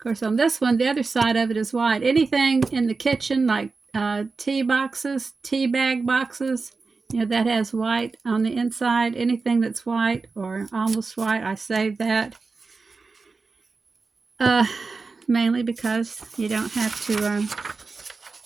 course, on this one, the other side of it is white. Anything in the kitchen, like tea boxes, tea bag boxes, you know, that has white on the inside. Anything that's white or almost white, I save that. Mainly because you don't have to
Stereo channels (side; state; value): left; quieter; 4.2 dB